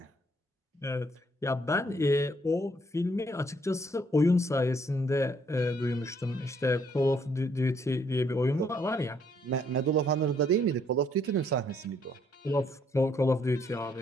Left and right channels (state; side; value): normal; both; correlation 0.68